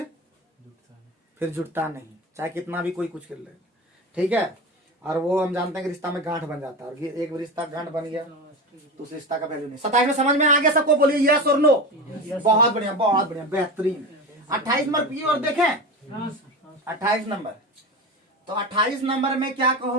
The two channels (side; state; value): both; normal; correlation 0.25